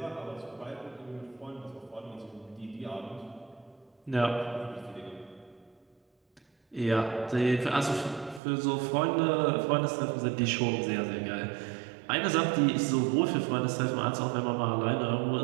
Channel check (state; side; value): drops out; left; at 8.4 s